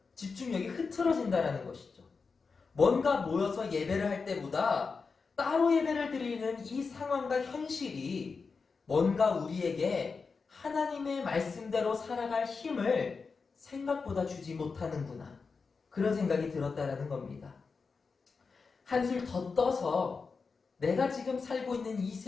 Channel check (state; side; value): quieter; right; 4.8 dB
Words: 집중력이 흐트러진다라는 것이죠. 뭔가 모여서 예배를 할 때보다 따로 예배를 드리는 이 상황과 현실이 뭔가 우리에게 하나님의 말씀대로 살아갈 힘을 생각보다 주지 못하는구나. 그런 생각이 들었다라는 겁니다. 한술 더 떠서 내가 지금 살고 있는 이